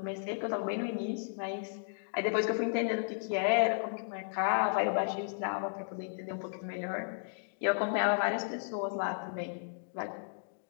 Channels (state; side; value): silent; right; digital silence